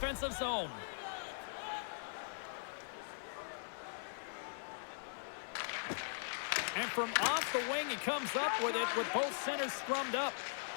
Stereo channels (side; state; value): right; silent; 51 dB below the other